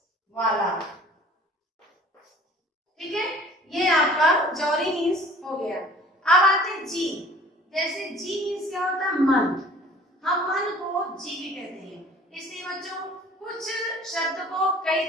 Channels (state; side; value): normal; both; correlation 0.49